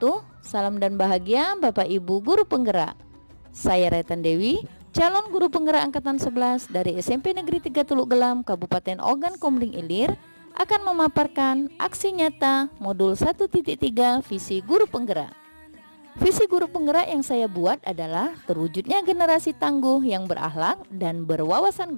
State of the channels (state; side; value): inverted; both; correlation -1.00